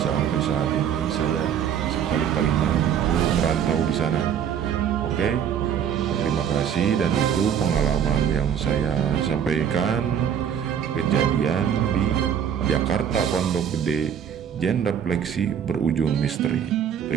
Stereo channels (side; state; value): left; quieter; 8.5 dB